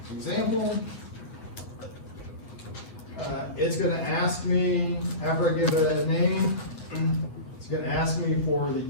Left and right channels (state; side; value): late; right; 8.7 ms